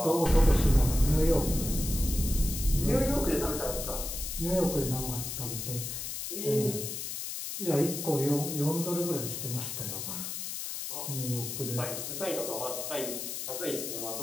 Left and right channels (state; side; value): noise; left; hiss, 5 dB below the sound